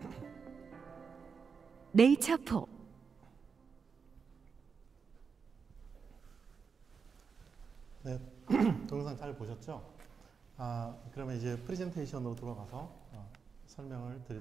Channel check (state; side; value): quieter; left; 5.7 dB